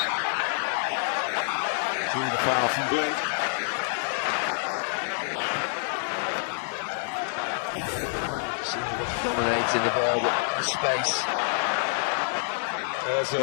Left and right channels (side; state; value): right; silent; digital silence